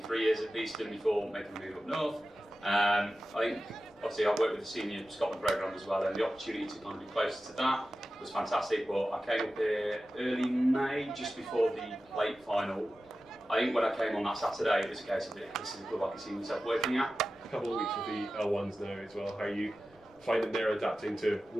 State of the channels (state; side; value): normal; both; correlation 0.94